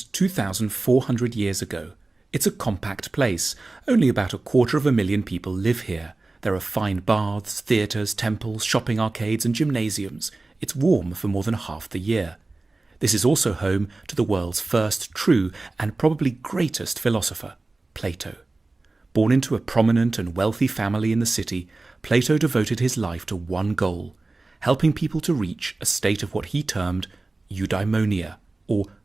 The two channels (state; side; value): quieter; left; 3.3 dB